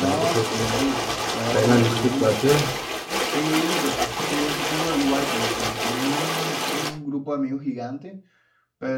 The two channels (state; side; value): identical; both; correlation 1.00